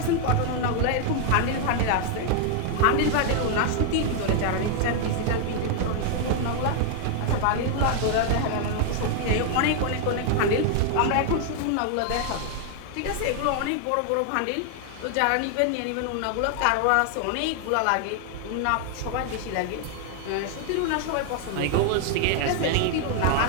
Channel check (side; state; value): both; different; correlation 0.00